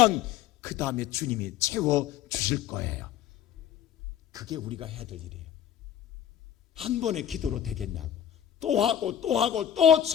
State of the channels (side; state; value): right; quieter; 10.3 dB